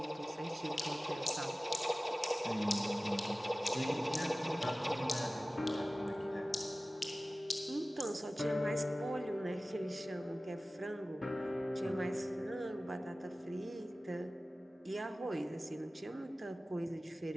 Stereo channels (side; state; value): both; normal; correlation 0.97